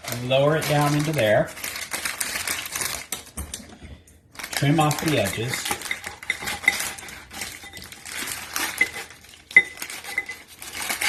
lower it down into there. Trim off the edges.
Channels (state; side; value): identical; both; correlation 1.00